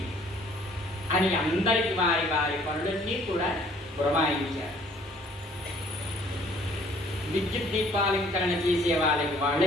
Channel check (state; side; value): normal; both; correlation 0.58